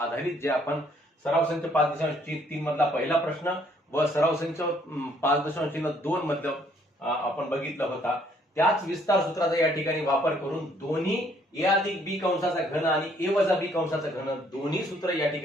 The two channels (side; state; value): both; normal; correlation 0.65